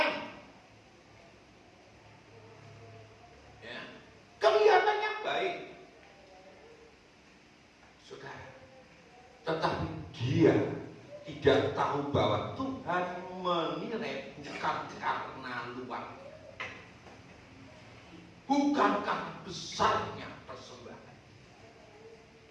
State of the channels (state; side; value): identical; both; correlation 1.00